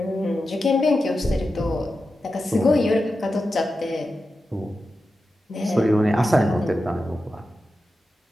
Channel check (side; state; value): both; normal; correlation 0.91